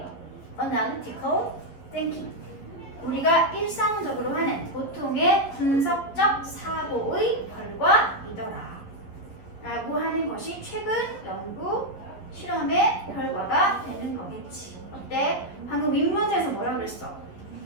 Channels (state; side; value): late; right; 11 ms